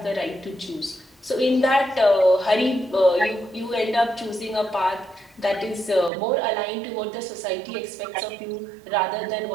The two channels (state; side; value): drops out; left; at 6.1 s